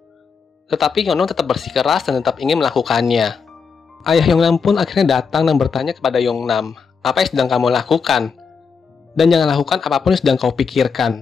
Tetapi Yongnam tetap bersikeras dan tetap ingin melakukannya. Ayah Yongnam pun akhirnya datang dan bertanya kepada Yongnam, "Apa yang sedang kamu lakukan? Dan jangan lakukan apapun yang sedang kau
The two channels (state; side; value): quieter; right; 5.7 dB